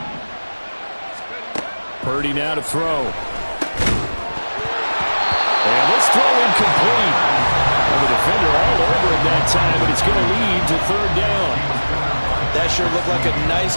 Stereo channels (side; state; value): both; inverted; correlation -1.00